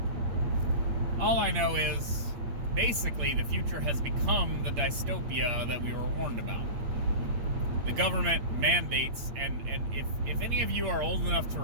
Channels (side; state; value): left; late; 8.6 ms